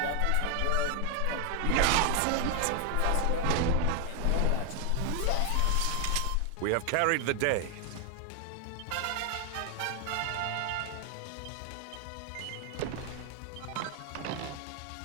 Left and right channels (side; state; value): both; different; correlation 0.00